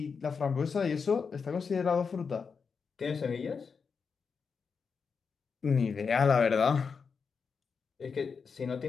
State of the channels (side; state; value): right; quieter; 5.6 dB